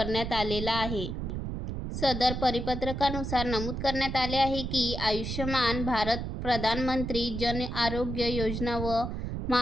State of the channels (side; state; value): right; noise; rumble, 4 dB below the sound